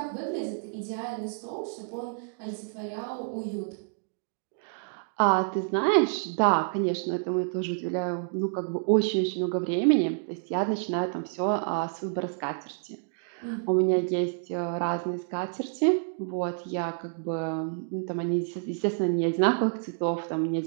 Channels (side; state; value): left; silent; digital silence